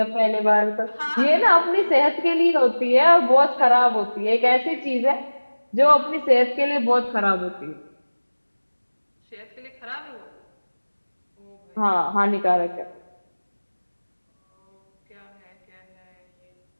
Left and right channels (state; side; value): inverted; both; correlation -1.00